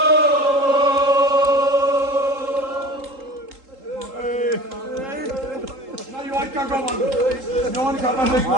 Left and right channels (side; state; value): left; late; 3.8 ms